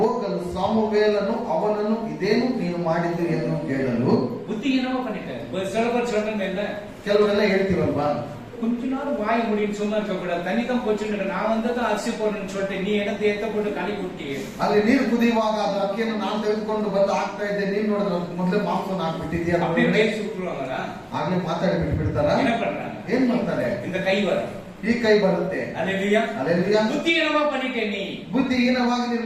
ಸಾಮುವೇಲನು ಅವನನ್ನು ಇದೇನು ನೀನು ಮಾಡಿದ್ದು ಎಂದು ಕೇಳಲು. புத்திஹீனமா பண்ணிட்டாரு. சில பேர் சொல்றாங்க, இல்ல ಕೆಲವರೆಲ್ಲ ಹೇಳ್ತೀವಲ್ವಾ, கொஞ்ச நேரம் வாய் முடின்னு சும்மா இருக்க கூடாது, தண்ணி தான் போச்சுன்னு நான் வந்து அரிசி போடுறேன்னு சொல்லிட்டு நீ என்ன தேத்த போட்டு களி குட்டி. ಅಲ್ಲಿ ನೀರು ಕುದಿಯುವಾಗ ಅದು ಅಕ್ಕಿಯನ್ನು ನಾನು ತೆಗೆದುಕೊಂಡು ಬಂದು ಹಾಕ್ತಾ ಇದ್ದೆ, ನೀನ್ ನೋಡಿದ್ರೆ ಮೊದಲೇ ಮಾಂಸವನ್ನು ಹಾಕ್ಬಿಟ್ಟಿದ್ಯಾ? அப்படியே பேசி விட்டுருவாங்களா? ಆಗ್ಲೇ ಮಾತಾಡಿ ಬಿಟ್ಬಿಡ್ತಾರ. என்ன பண்றாங்க? ಏನ್ ಮಾಡ್ತಾರೆ? இந்த ಕೈ வரும், ಈ ಕೈ ಬರುತ್ತೆ. அல்லேலூயா. அல்லேலೂಯಾ. புத்திஹீனமா பண்ணிட்டே நீ. ಬುದ್ಧಿಹೀನವಾಗಿ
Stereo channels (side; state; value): both; identical; correlation 1.00